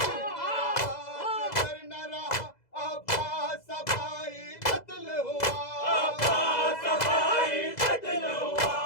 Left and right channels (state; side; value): late; right; 2.0 ms